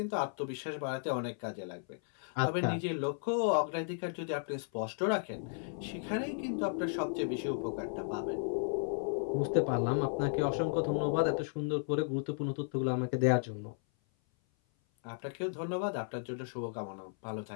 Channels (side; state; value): right; silent; 55 dB below the other